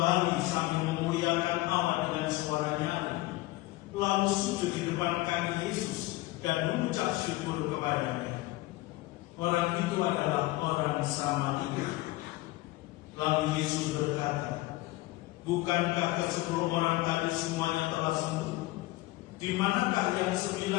sambil memuliakan Allah dengan suara nyaring, lalu sujud di depan kaki Yesus dan mengucap syukur kepadanya. Orang itu adalah orang Samaria. Lalu Yesus berkata, "Bukankah ke-10 orang tadi semuanya telah sembuh? Di manakah yang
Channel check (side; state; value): right; quieter; 19.0 dB